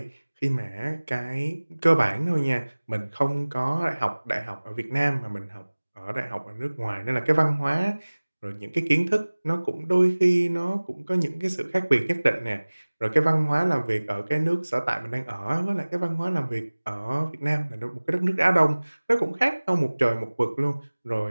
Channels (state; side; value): inverted; both; correlation -1.00